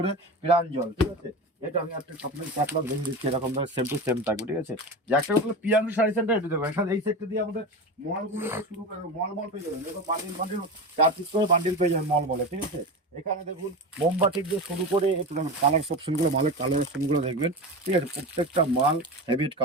প্রাঞ্জল, ঠিক আছে। এটা আমি একটা আপনাকে ক্যাটলগ দেখে দিচ্ছি, এরকম সেম টু সেম থাকবে, ঠিক আছে। যে একটা হলো প্রিয়াংশু শাড়ি সেন্টার, এটা দেখবেন এখানে এই সেক্টর দিয়ে আমাদের মলগুলো শুরু করে, মল পেয়ে যাবেন। দেখো বান্ডিল 4 পিস করে বান্ডিল পেয়ে যাবেন মলে, ঠিক আছে। এখানে দেখুন মোমবাতি দিয়ে শুরু করে একটু কালার অপশনগুলো, মালের কালার অপশনগুলো দেখবেন, ঠিক আছে। প্রত্যেকটা মাল হেভিট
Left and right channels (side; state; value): both; normal; correlation 0.25